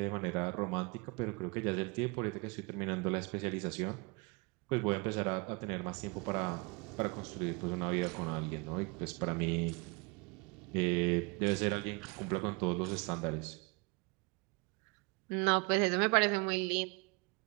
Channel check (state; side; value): quieter; left; 28.4 dB